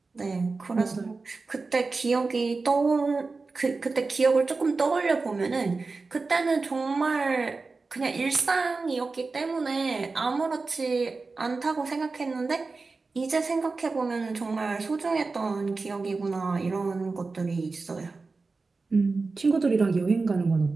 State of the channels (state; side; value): quieter; left; 4.0 dB